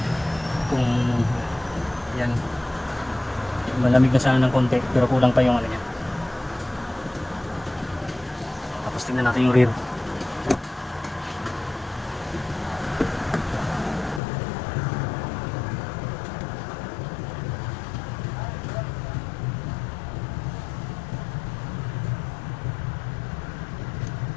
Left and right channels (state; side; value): drops out; right; at 14.2 s